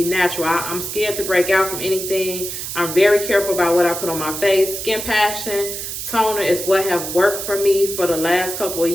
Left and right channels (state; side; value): noise; right; hiss, 6 dB below the sound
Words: natural. I'm scared to break out from anything. I'm very careful about what I put on my face. SKINPASCHION toner is what have worked for me for the last couple of